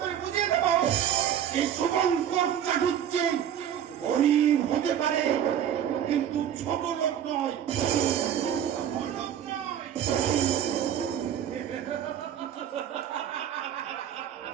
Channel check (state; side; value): quieter; left; 9.8 dB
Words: করে বুঝিয়ে দেবো এই শুভঙ্কর চাটুর্যে গরিব হতে পারে, কিন্তু ছোট লোক নয়। বড় লোক নয়।